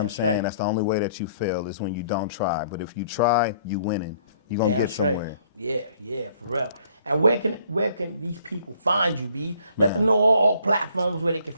I'm saying? That's the only way that you fail, is when you don't try. But if you try, you winning. You're going to get somewhere. Yeah, for real. And where can these people find you, B? Let them know all platforms where they can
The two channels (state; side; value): inverted; both; correlation -0.61